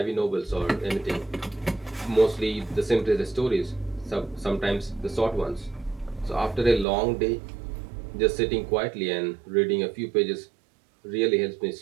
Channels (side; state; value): left; drops out; at 6.9 s